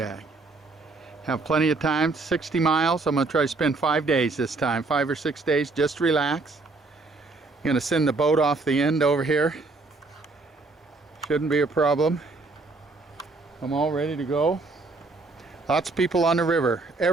Have plenty of time, 60 miles. I'm going to try to spend 5 days this time, 5 or 6 days, just relax. I'm going to send the boat off the end over here. Shouldn't be a problem. I'm all ready to go. Lots of people on the river.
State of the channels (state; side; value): quieter; left; 3.5 dB